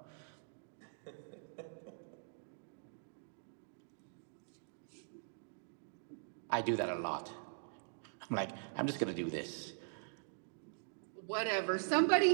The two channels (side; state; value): left; silent; digital silence